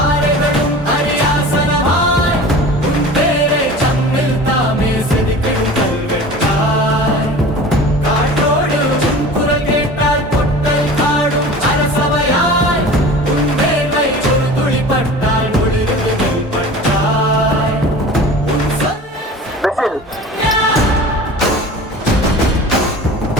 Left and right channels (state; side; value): normal; both; correlation 0.39